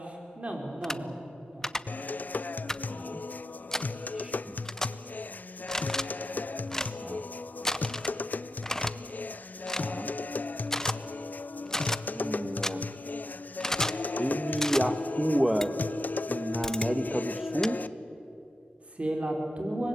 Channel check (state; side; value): normal; both; correlation 0.86